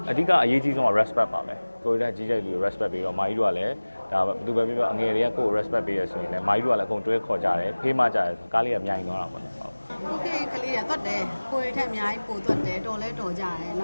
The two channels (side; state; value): both; inverted; correlation -1.00